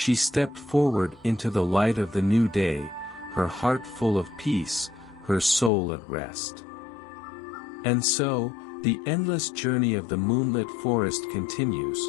stepped forward into the light of the new day, her heart full of peace, her soul at rest. And so, the endless journey of the moonlit forest continues,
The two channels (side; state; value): right; drops out; at 5.7 s